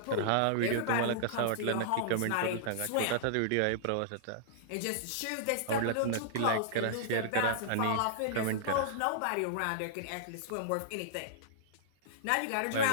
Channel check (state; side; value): different; both; correlation -0.02